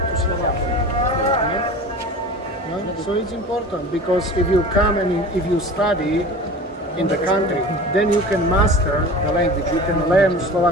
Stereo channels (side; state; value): both; normal; correlation 0.37